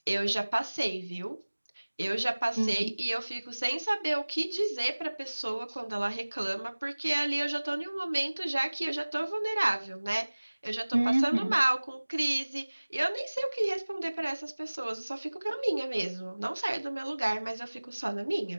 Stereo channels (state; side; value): inverted; both; correlation -1.00